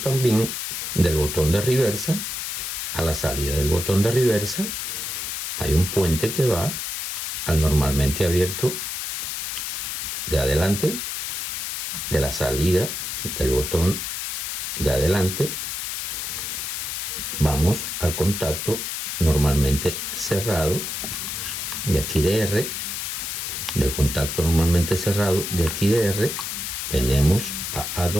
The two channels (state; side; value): noise; left; hiss, 4 dB below the sound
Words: del botón de reversa. A la salida del botón de reversa hay un puente que va al normalmente abierto de adelante, de la salida del botón de adelante vamos al contacto normalmente cerrado de aquí de R, del contacto normalmente cerrado de aquí de R venimos a